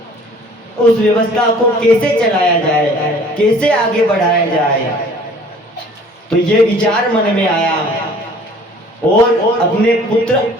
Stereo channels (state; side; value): normal; both; correlation 0.51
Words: उस व्यवस्था को कैसे चलाया जाए, कैसे आगे बढ़ाया जाए, तो ये विचार मन में आया और अपने पुत्र